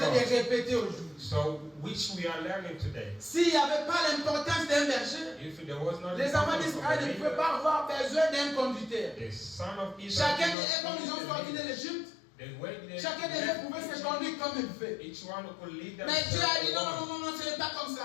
de God. répéter aujourd'hui. So, which we are learning today. S'il n'y avait pas l'importance d'un berger, If there was not les enfants the d'Israël ne pouvaient pas avoir besoin d'un conducteur. the son of Israel, Chacun d'eux, comme ils ont sorti de l'Égypte, the way they chacun d'eux pouvait se conduire comme il veut. each one could lead them. Mais Dieu a dit non, non, non, non, ce n'est pas comme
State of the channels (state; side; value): drops out; right; at 10.6 s